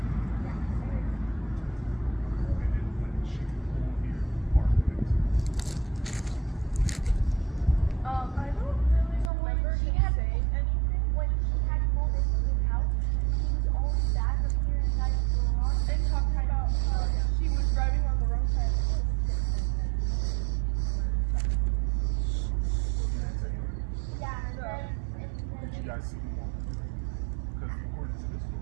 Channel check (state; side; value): drops out; left; at 9.3 s